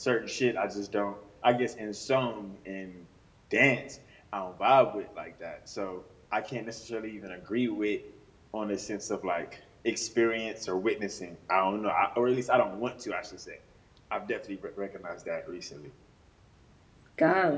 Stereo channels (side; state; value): both; identical; correlation 1.00